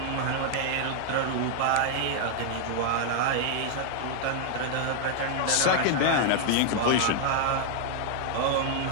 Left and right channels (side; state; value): both; different; correlation 0.00